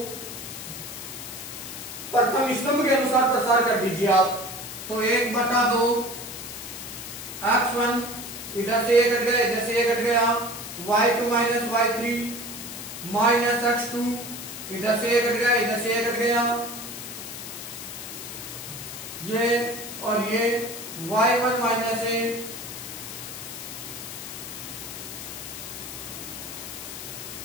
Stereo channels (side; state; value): left; noise; hiss, 9 dB below the sound